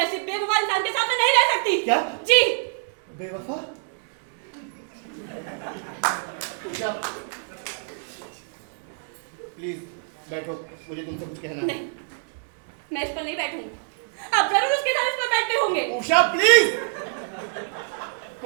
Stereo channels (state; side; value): silent; left; digital silence